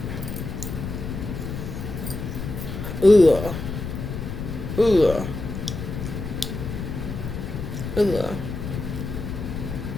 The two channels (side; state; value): left; noise; rumble, 6 dB below the sound